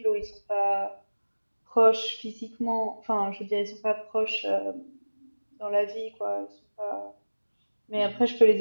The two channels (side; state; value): both; inverted; correlation -1.00